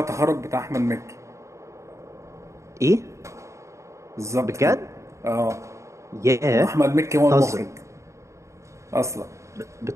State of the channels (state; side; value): late; left; 0.14 ms